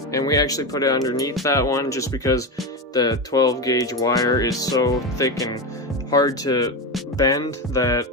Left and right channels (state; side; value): normal; both; correlation 0.16